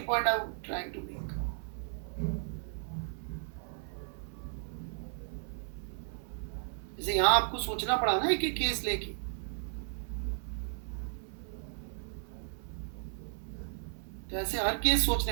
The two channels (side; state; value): left; silent; 55 dB below the other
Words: point I am trying to make. जैसे यहाँ आपको सोचना पड़ा ना एक एक केस लेके, तो ऐसे हर केस